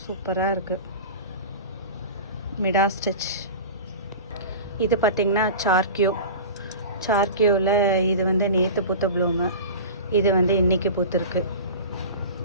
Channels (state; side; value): inverted; both; correlation -0.33